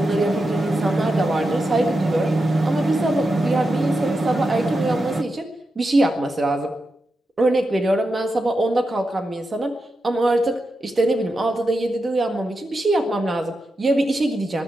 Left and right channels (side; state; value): both; normal; correlation 0.88